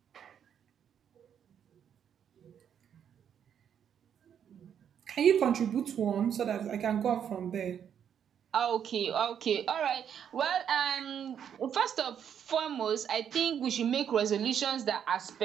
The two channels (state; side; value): quieter; left; 8.6 dB